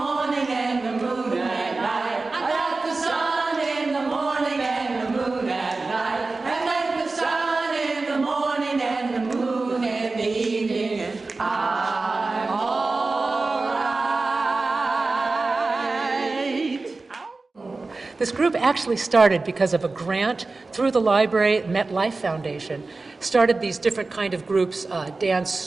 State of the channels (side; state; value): left; quieter; 3.6 dB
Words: This group actually started because of a grant through the library. MetLife Foundation started these different kind of groups, dance,